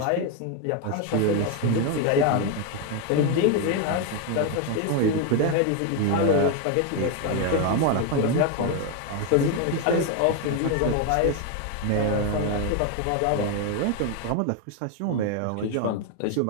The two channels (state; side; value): different; both; correlation 0.01